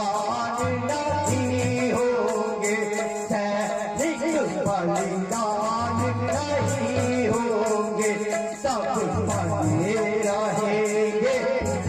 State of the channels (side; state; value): both; identical; correlation 1.00